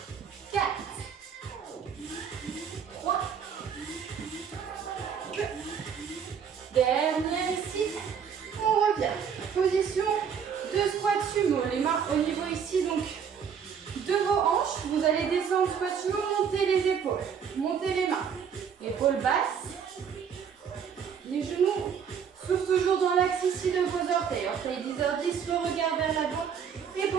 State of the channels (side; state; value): left; quieter; 7.3 dB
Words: 4. 3. 2. Dernière ici. On revient. Position de squat sumo. Les mains au niveau ici, donc, de vos hanches. Vous allez descendre squat sumo, monter les épaules. Montez les mains. Épaules basses. Les genoux. Souffle toujours dans l'axe ici de vos orteils. Orteils 10h10, le regard vers l'avant. Et